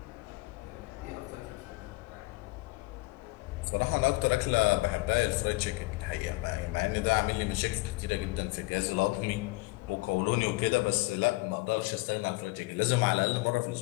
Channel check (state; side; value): quieter; right; 23.4 dB